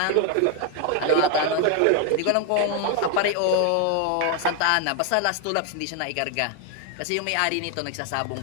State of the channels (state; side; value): different; both; correlation 0.01